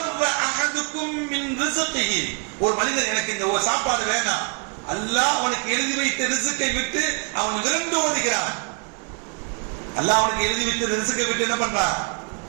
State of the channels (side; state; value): left; quieter; 37.8 dB